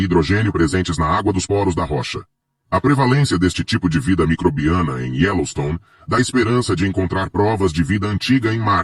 presentes na água dos poros da rocha. A prevalência deste tipo de vida microbiana em Yellowstone dá esperança de encontrar provas de vida antiga em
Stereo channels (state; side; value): identical; both; correlation 1.00